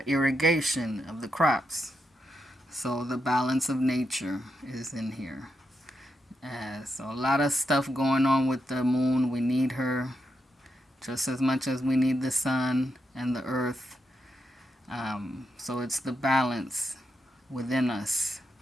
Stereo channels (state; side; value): normal; both; correlation 0.84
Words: irrigation of the crops. So the balance of nature is in here. So a lot of stuff going on with the moon. We need her just as much as we need the sun and the earth. So it's the balance within us,